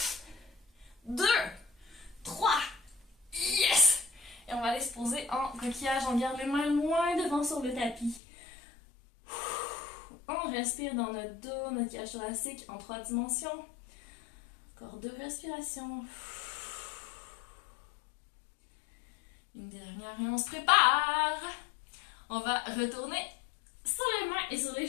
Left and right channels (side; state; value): right; drops out; at 8.2 s